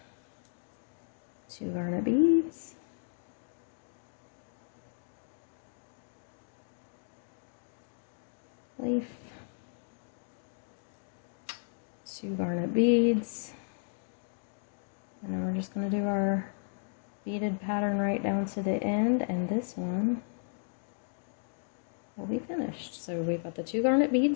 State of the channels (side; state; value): right; silent; digital silence